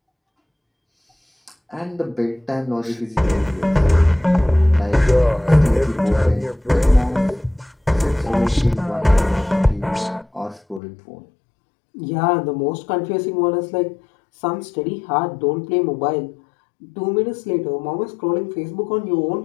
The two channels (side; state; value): right; drops out; at 10.8 s